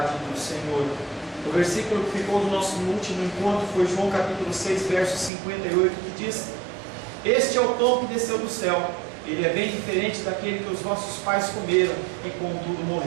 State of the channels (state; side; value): drops out; left; at 5.3 s